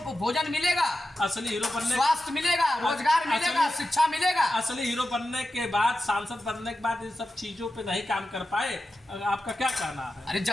भोजन मिलेगा, असली हीरो बनने, स्वास्थ्य मिलेगा, रोजगार मिलेगा, शिक्षा मिलेगा। असली हीरो बनने के बाद, सांसद बनने के बाद इन सब चीजों पे नहीं काम कर पाए, आपका क्या कहना है? अरे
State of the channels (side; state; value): both; normal; correlation 0.91